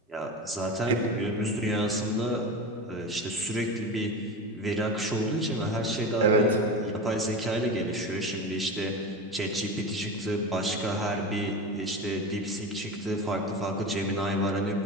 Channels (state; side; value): normal; both; correlation 0.25